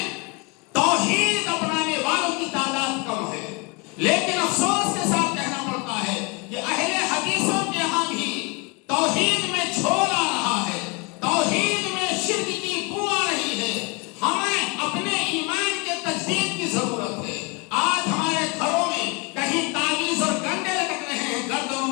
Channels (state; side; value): quieter; right; 29.8 dB